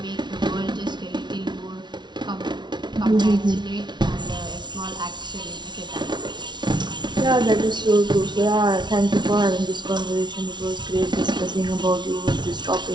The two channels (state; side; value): late; left; 0.21 ms